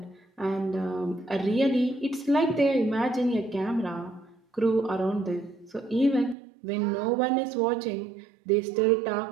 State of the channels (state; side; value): drops out; left; at 6.4 s